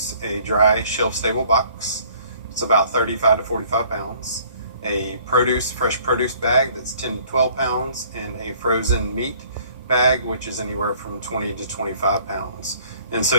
a dry shelf-stable box. It's about 35 to 45 pounds. A fresh produce bag that's 10 to 12 pounds, and a frozen meat bag, which is anywhere from 20 to 25 pounds. And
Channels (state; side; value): inverted; both; correlation -0.57